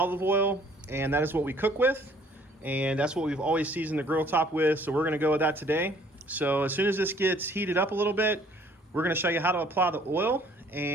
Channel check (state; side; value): normal; both; correlation 0.59